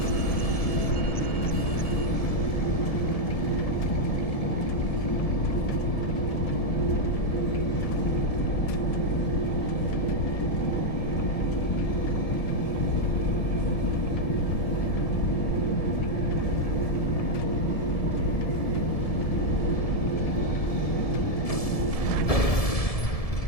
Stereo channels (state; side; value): late; right; 1.7 ms